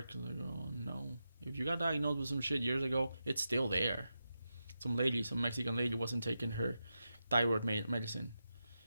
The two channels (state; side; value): inverted; both; correlation -0.89